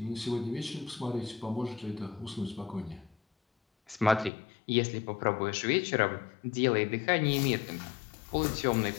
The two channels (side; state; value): right; drops out; at 4.3 s